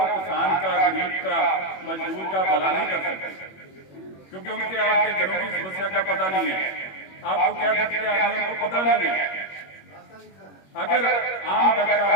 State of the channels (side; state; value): right; late; 21 ms